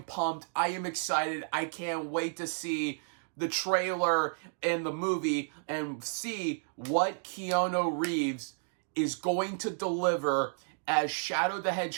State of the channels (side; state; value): left; silent; digital silence